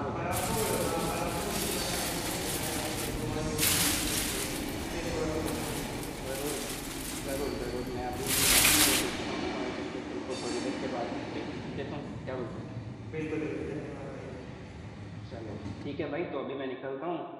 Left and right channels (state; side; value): identical; both; correlation 1.00